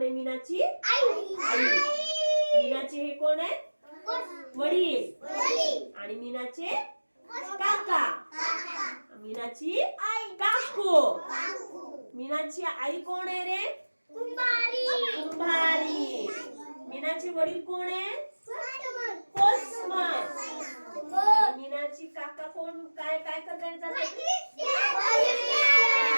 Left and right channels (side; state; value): both; inverted; correlation -1.00